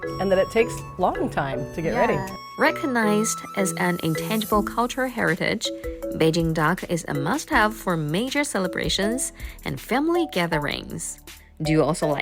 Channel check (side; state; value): both; identical; correlation 1.00